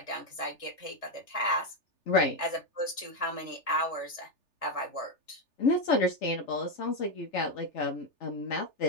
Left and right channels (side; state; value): right; late; 3.4 ms